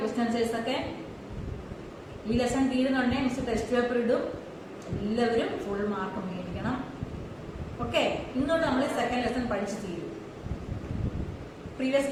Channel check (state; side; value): identical; both; correlation 1.00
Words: questions ഒക്കെ? ഈ lesson തീരുന്നുണ്ടെങ്കിൽ miss test paper ഇടും. എല്ലാവരും full mark മേടിക്കണം. Okay, ഇന്നോട്ട് നമ്മൾ second lesson പഠിച്ചു തീരും. പ്രീവിയസ്